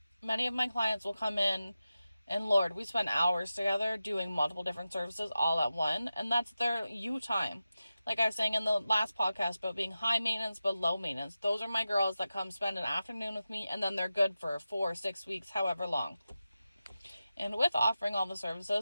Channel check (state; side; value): inverted; both; correlation -0.93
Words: Many of my clients will come in, and Lord, we spend hours together doing multiple different services all at one, and that's their you time. Like I was saying in the last podcast about being high maintenance but low maintenance. Those are my girls that come spend an afternoon with me, and then they're good for 4 or 6 weeks, however long. And with offering all the